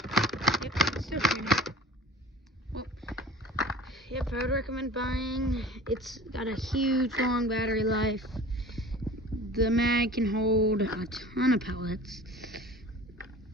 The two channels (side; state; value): both; normal; correlation 0.42